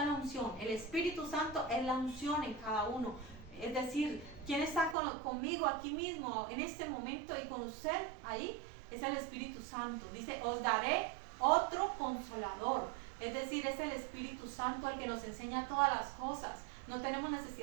la unción. El Espíritu Santo es la unción en cada uno. Es decir, ¿quién está conmigo aquí mismo en este momento y con usted ahí? Es el Espíritu Santo. Dice, os daré otro consolador. Es decir, es el Espíritu Santo el que nos enseña todas las cosas. No tenemos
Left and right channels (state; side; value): drops out; left; at 5.0 s